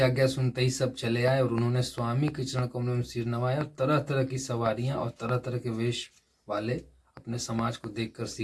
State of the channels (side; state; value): both; identical; correlation 1.00